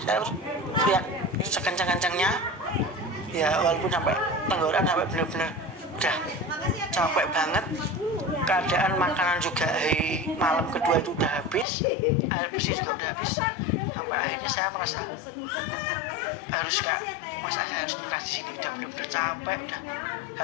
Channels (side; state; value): right; drops out; at 11.7 s